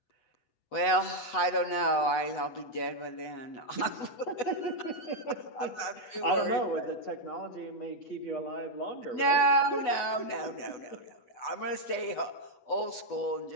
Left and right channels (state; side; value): late; right; 8.2 ms